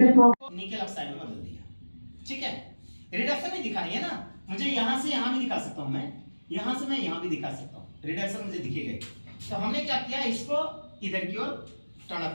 ऑक्साइड में बदल दिया। ठीक है, रिडक्शन नहीं दिखानी है ना, मुझे यहां से यहां भी दिखा सकता हूं, मैं यहां से मैं यहां भी दिखा सकता हूं, रिडक्शन मुझे दिखेगा। तो हमने क्या किया, इसको इधर की ओर टर्न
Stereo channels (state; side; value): inverted; both; correlation -1.00